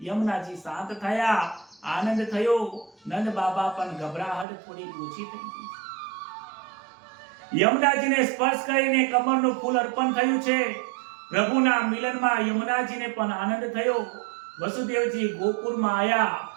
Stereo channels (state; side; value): drops out; left; at 4.5 s